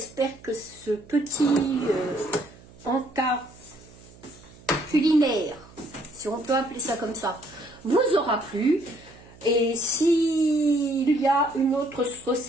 que ce petit encas culinaire, si on peut appeler ça comme ça, vous aura plu. Et s'il y a une autre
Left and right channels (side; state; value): right; noise; hum, 23 dB below the sound